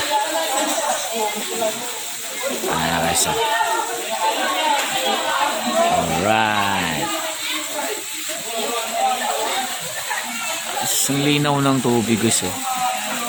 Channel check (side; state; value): both; identical; correlation 1.00